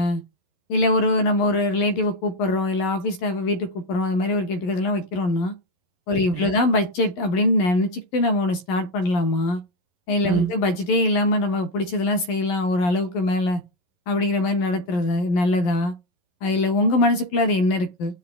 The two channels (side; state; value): right; late; 12 ms